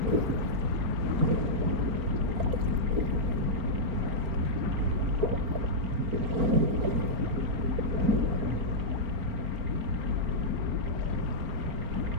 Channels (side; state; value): left; late; 4.4 ms